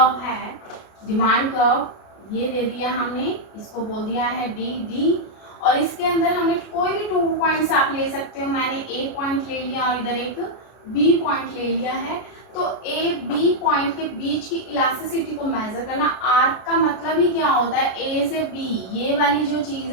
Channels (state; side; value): late; right; 33 ms